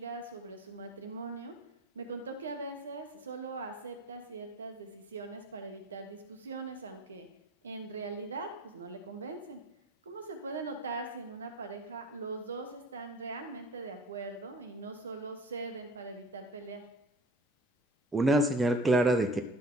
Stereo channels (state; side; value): normal; both; correlation 0.46